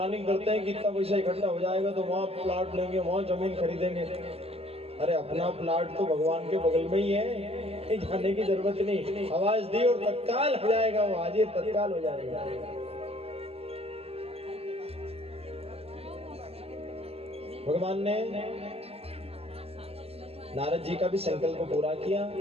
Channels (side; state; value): left; late; 0.29 ms